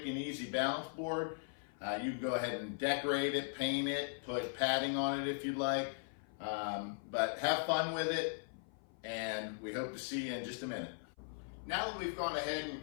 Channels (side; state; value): right; silent; 52 dB below the other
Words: and easy balance board. You can go ahead and decorate it, paint it, put padding on it if you'd like. But have fun with it, and we hope to see you in just a minute. Now that we've gone ahead and